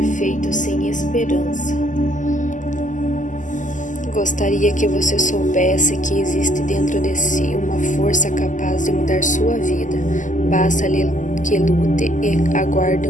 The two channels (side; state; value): right; late; 0.37 ms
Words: feito sem esperança. Gostaria que você soubesse que existe dentro de si uma força capaz de mudar sua vida. Basta que lute e aguarde